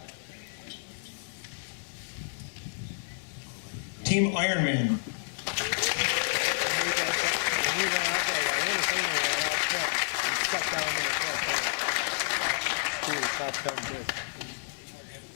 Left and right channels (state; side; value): silent; right; 58 dB below the other